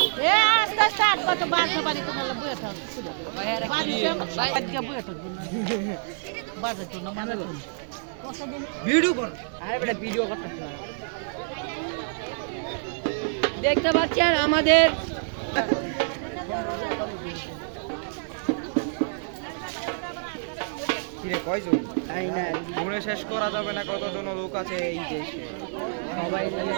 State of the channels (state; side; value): silent; left; 60 dB below the other